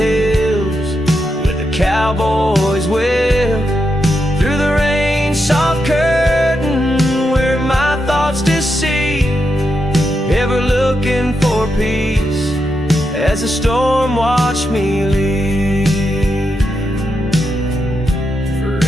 with the cowboy's whip through the rain soft curtain where my thoughts deceive, ever looking for peace as the storm watched me leave.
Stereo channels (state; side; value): normal; both; correlation 0.84